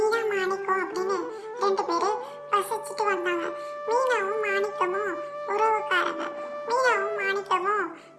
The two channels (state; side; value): identical; both; correlation 1.00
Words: மாணிக்கம் அப்படின்னு ரெண்டு பேரு வசிச்சுட்டு வந்தாங்க. மீனாவும் மாணிக்கமும் உறவுக்காரங்க. மீனாவும் மாணிக்கமும்